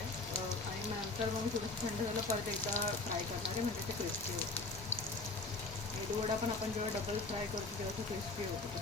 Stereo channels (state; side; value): quieter; right; 3.4 dB